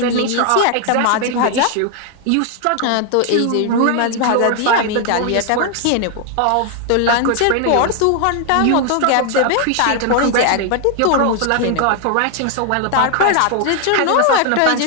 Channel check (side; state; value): both; different; correlation 0.00